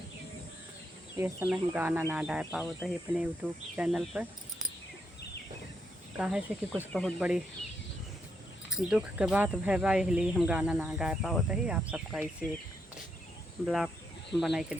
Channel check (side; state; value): both; normal; correlation 0.79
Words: इस समय हम गाना ना डाल पाओ तो ही अपने यूट्यूब चैनल पर काहे से कि कुछ बहुत बड़ी दुख के बात भैबा, इसलिए हम गाना ना गा पाओ तो ही आप सबका इसे ब्लॉग बना के